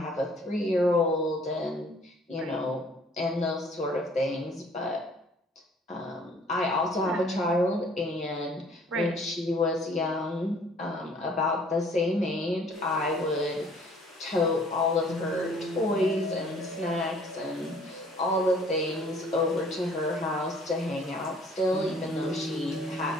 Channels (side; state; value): both; normal; correlation 0.56